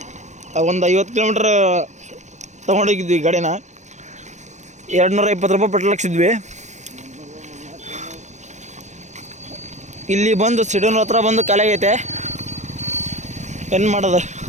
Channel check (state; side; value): late; left; 0.34 ms